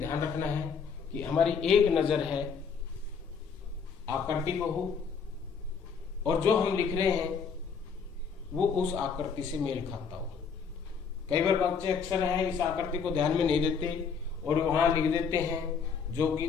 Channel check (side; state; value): right; quieter; 6.1 dB